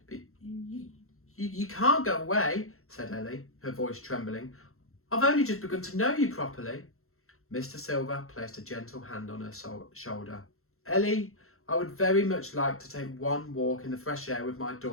But you can't go away, said Ellie, her voice trembling. I've only just begun to know you properly. Mr. Silver placed a gentle hand on her shoulder. Ellie, I would very much like to take one walk in the fresh air with my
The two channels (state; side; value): late; right; 0.62 ms